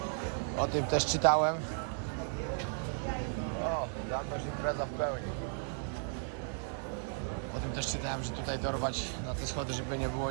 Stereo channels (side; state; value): left; silent; 54 dB below the other